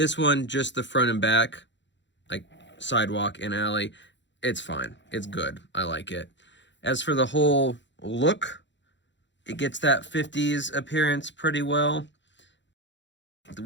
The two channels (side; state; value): right; late; 0.53 ms